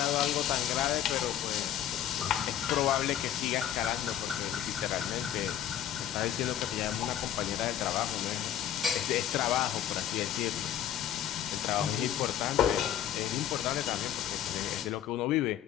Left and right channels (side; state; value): right; quieter; 10.8 dB